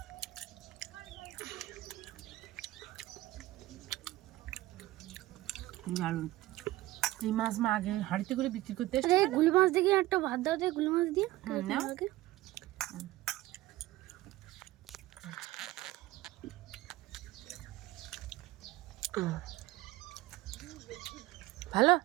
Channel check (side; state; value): left; quieter; 17.4 dB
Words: দারুণ। এই মাছ মা আগে হাঁড়িতে করে বিক্রি করতে এসছে। আরে গুলি মাছ দেখে একটা ভাত দাও তো, গুলি মাছ দিয়ে নাও। আমাকে। ভালো।